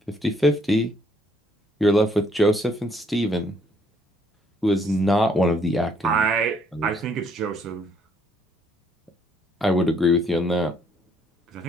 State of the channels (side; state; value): both; normal; correlation 0.66